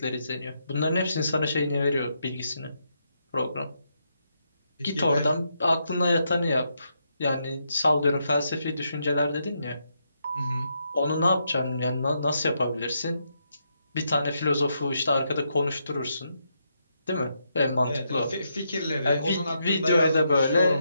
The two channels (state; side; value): inverted; both; correlation -0.80